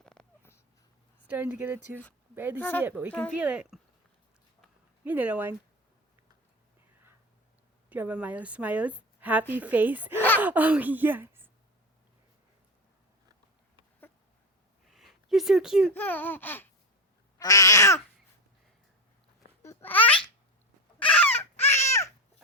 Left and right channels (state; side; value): normal; both; correlation 0.18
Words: Starting to get a tooth. Barely see it, but we can feel it. You little one. Do you have a Miles smiles? Happy face. Oh, yes. You're so cute.